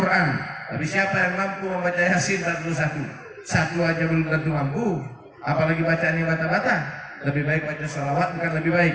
Tapi siapa yang mampu membaca Yasin 41? Satu aja belum tentu mampu, apalagi bacaan yang bata-bata. Lebih baik baca sholawat, bukan lebih baik,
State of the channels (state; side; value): identical; both; correlation 1.00